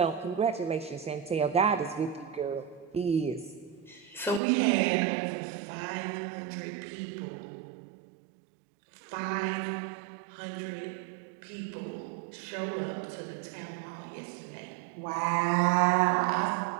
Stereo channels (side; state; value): left; drops out; at 4.4 s